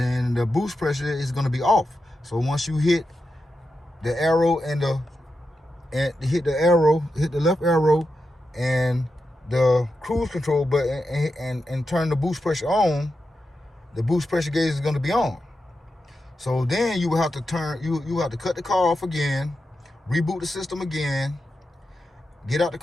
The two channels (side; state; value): both; normal; correlation 0.89